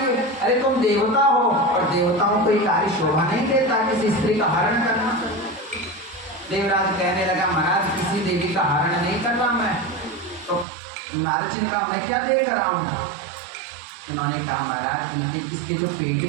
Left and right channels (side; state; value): left; drops out; at 10.7 s